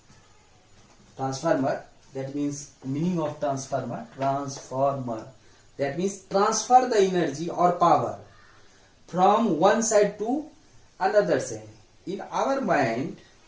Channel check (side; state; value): both; identical; correlation 1.00